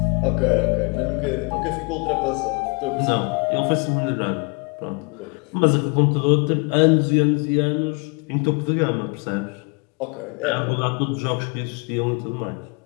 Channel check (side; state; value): right; quieter; 31.1 dB